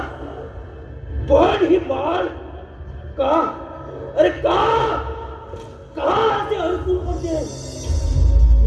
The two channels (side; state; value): both; identical; correlation 1.00